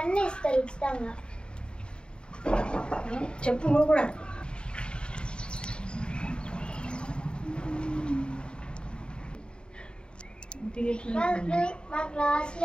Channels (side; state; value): right; late; 0.051 ms